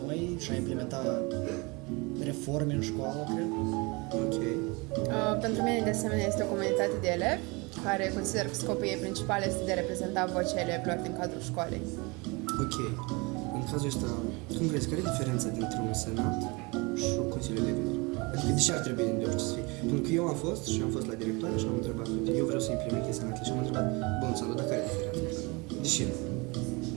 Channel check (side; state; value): left; quieter; 27.0 dB